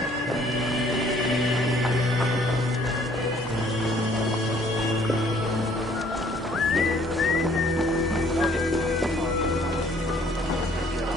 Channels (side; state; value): both; normal; correlation 0.60